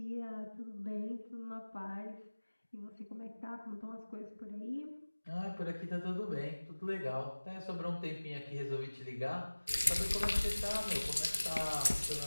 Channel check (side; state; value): both; inverted; correlation -1.00